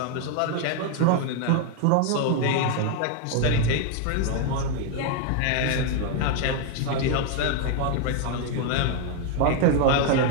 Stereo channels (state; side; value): different; both; correlation 0.00